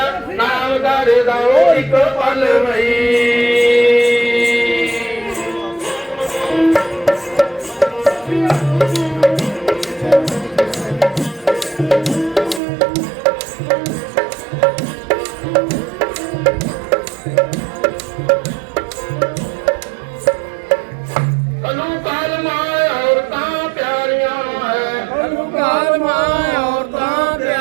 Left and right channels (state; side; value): drops out; left; at 12.6 s